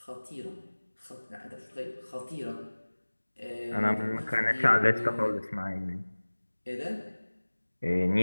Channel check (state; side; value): inverted; both; correlation -1.00